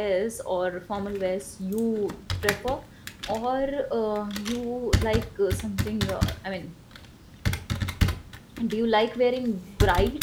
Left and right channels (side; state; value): both; identical; correlation 1.00